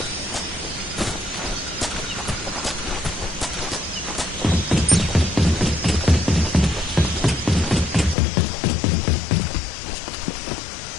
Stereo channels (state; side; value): drops out; right; at 8.2 s